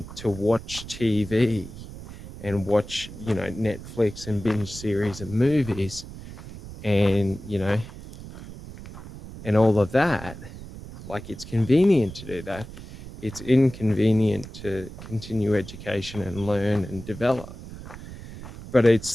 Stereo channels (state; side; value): noise; right; rumble, 13 dB below the sound